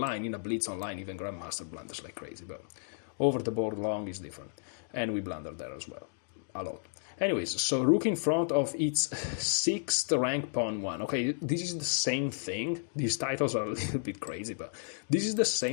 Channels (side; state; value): right; silent; digital silence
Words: in a blitz online, even Grandmaster blunders like crazy. But over the board long is different. And we blunder there as well. A lot. Anyways, so rook in front of its 6th rank pawn 1. Okay, this is the same thing. These titles are a little bit crazy, but this is the